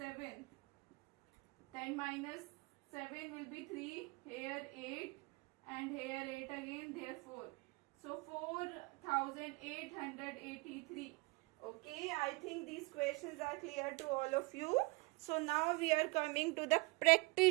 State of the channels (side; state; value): left; quieter; 26.9 dB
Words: Then minus 7 will be 3. Here 8 and here 8 again. Therefore, so 4883. Okay, I think these questions are clear to all of you. So now we are coming to the